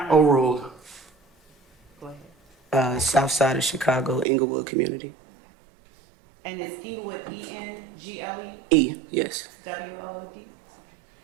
Overruled. go ahead. South side of Chicago, Inglewood community. And is Inglewood E-N-G-L-E? E, yes. W-O-O-D?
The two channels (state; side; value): drops out; left; at 4.2 s